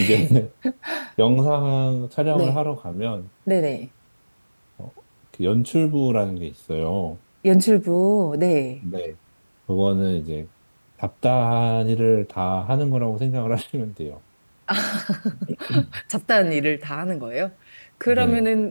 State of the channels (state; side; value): inverted; both; correlation -1.00